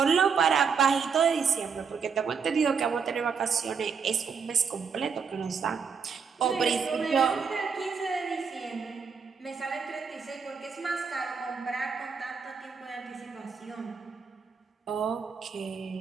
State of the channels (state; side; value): quieter; left; 6.0 dB